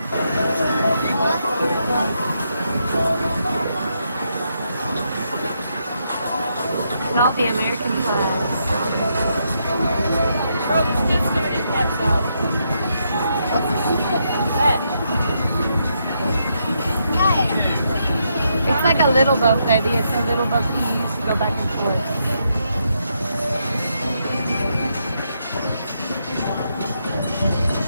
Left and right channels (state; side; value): inverted; both; correlation -0.79